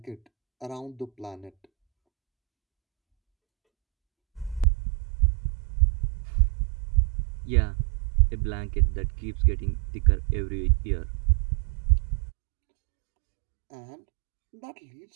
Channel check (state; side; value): drops out; left; at 4.7 s